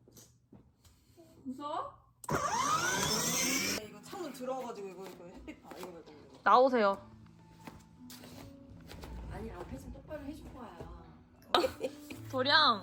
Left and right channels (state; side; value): identical; both; correlation 1.00